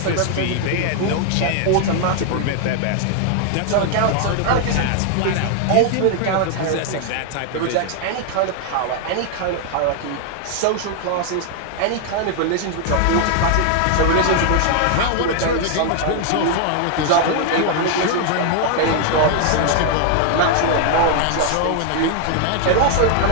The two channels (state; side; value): different; both; correlation 0.00